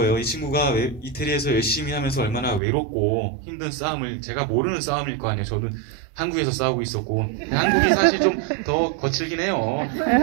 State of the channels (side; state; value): left; drops out; at 2.6 s